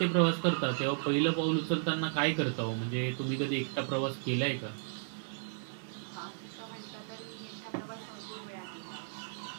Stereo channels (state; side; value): silent; left; 55 dB below the other